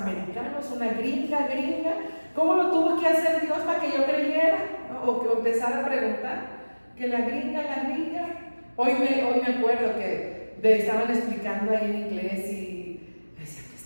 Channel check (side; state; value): both; inverted; correlation -1.00